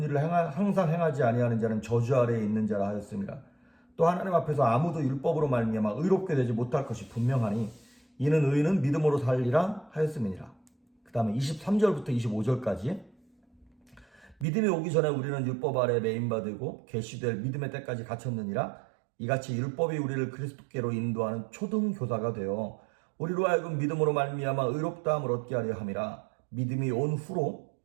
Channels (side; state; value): left; drops out; at 14.5 s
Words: 일을 항상 행하지 아니하는 자는 저주 아래에 있는 자라 하였습니다. 또 하나님 앞에서 아무도 율법으로 말미암아 의롭게 되지 못할 것이 분명하니 이는 의인은 믿음으로 살리라 하였음이니라. 그 다음에 23절부터 25절까지 믿음이 오기 전에 우리는 율법 아래에 매인받고 계시될 믿음의 때까지 갇혔느니라. 이같이 율법이 우리를 그리스도께로 인도하는 초등교사가 되어 우리로 하여금 믿음으로 말미암아 의롭다함을 얻게 하려 함이라. 믿음이 온